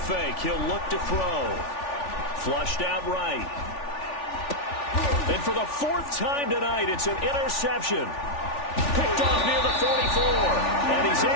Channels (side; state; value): right; late; 3.4 ms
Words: he'll look to throw. Flushed out right. And for the fourth time tonight, it's an interception. Picked off near the 44. And he's